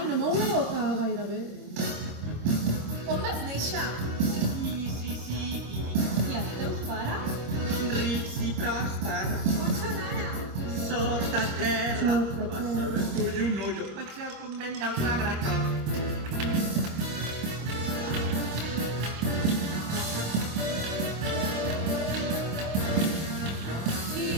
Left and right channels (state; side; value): late; left; 25 ms